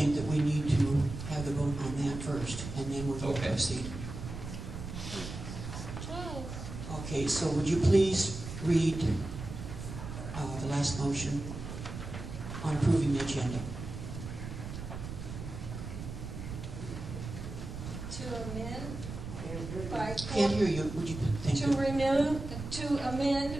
that we need to have the vote on that first, and then we'll Okay. proceed. Okay, so would you please read the last motion on approving the agenda? To amend by Can't hear you. Would you thank you? to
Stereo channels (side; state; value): right; noise; rumble, 8 dB below the sound